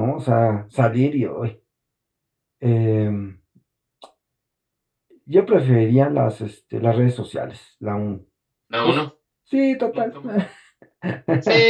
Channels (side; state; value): both; identical; correlation 1.00